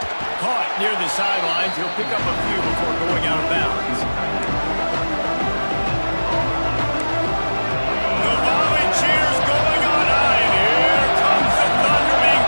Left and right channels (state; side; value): inverted; both; correlation -1.00